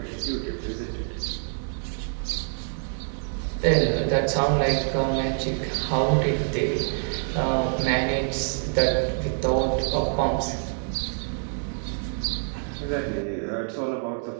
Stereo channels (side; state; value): left; silent; 57 dB below the other